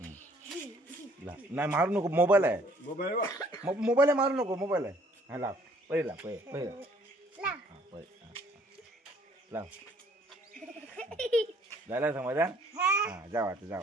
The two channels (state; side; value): normal; both; correlation 0.60